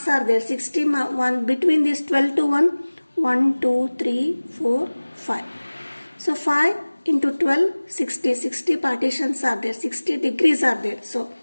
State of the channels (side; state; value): both; inverted; correlation -1.00